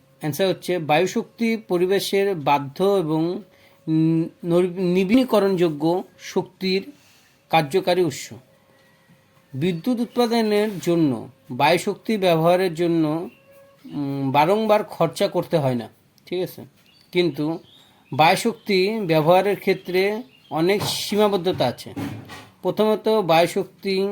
অ্যান্সার হচ্ছে বায়ু শক্তি পরিবেশের বাধ্য এবং নবীনীকরণযোগ্য শক্তির কার্যকারী উৎস। বিদ্যুৎ উৎপাদনের জন্য বায়ু শক্তি ব্যবহারের জন্য বারংবার খরচা করতে হয় না, ঠিক আছে। কিন্তু বায়ুশক্তি ব্যবহারের ক্ষেত্রে অনেক সীমাবদ্ধতা আছে। প্রথমত, বায়ুশক্তি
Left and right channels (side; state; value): both; identical; correlation 1.00